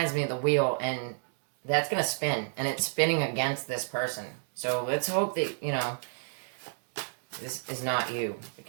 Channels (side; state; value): left; silent; digital silence